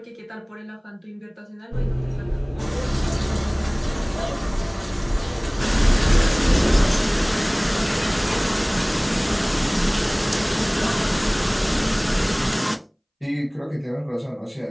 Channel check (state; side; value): identical; both; correlation 1.00